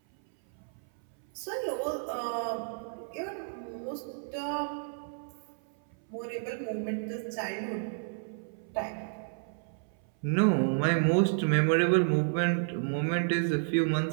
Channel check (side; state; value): left; silent; 57 dB below the other